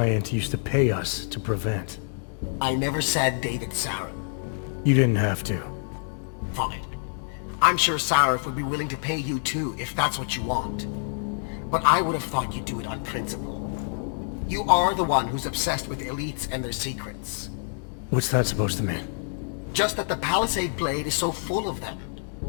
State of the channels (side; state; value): right; silent; digital silence